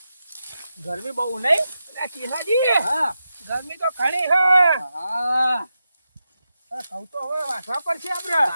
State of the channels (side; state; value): both; inverted; correlation -0.88